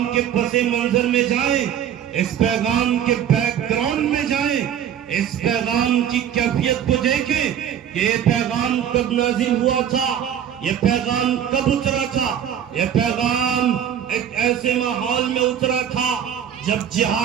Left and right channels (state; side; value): quieter; left; 9.4 dB